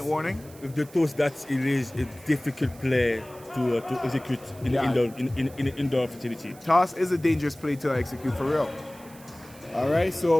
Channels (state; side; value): noise; right; hiss, 22 dB below the sound